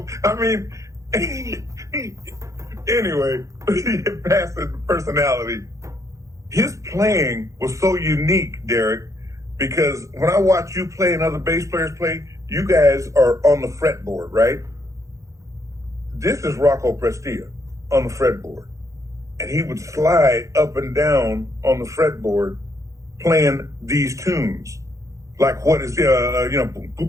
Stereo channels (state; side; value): late; left; 0.15 ms